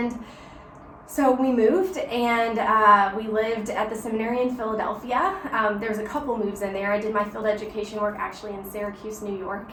so we moved, and we lived at the seminary in Philadelphia. There was a couple moves in there. I did my field education work actually in Syracuse, New York,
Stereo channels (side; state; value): both; identical; correlation 1.00